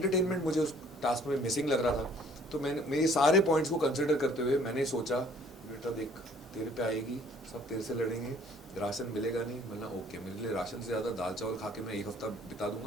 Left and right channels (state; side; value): normal; both; correlation 0.57